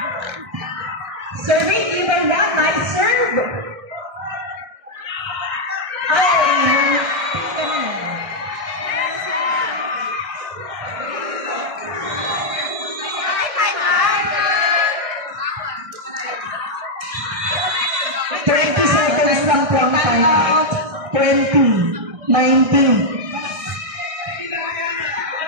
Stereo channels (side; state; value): left; late; 1.6 ms